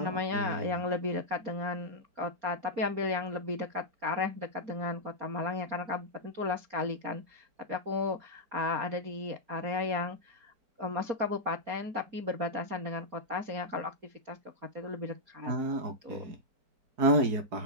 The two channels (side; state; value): left; late; 4.2 ms